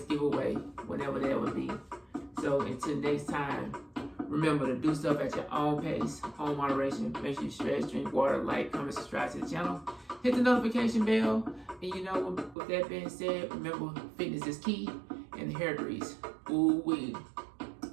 giveaway, whenever that would be. So until next time, remember to do stuff at your own pace, own moderation. Make sure you stretch, drink water, like, comment, subscribe to the channel. Hit the notification bell. And you know, with that being said, remember fitness is key and the hair grease. Ooh wee.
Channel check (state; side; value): drops out; left; at 12.6 s